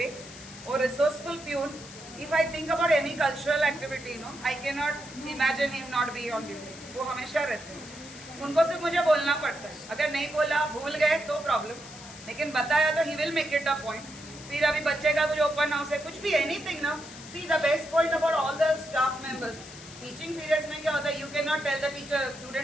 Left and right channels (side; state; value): left; noise; hiss, 16 dB below the sound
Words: और resourceful peon, if I think about any cultural activity, you know, I cannot imagine him not be on duty. वो हमेशा रहते हैं, उनको सिर्फ मुझे बोलना पड़ता है, अगर नहीं बोला भूल गए तो प्रॉब्लम, लेकिन बताया तो he will make it a point। फिर अभी बच्चे का कुछ ओपन हाउस है, कुछ भी एनीथिंग ना, see the best point about all the staff members, teaching periods में क्या होता है, you can not tell the teacher